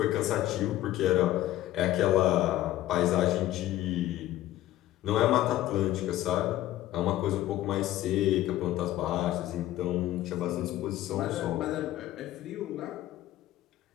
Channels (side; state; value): right; quieter; 14.5 dB